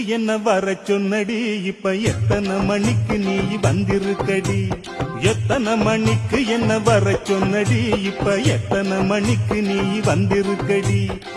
என்ன வர சொன்னடி, இப்ப எத்தனை மணிக்கு நீ வந்திருக்கடி. எத்தனை மணிக்கு என்ன வர சொன்னடி, இப்ப எத்தனை மணிக்கு நீ வந்திருக்கடி.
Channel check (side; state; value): both; identical; correlation 1.00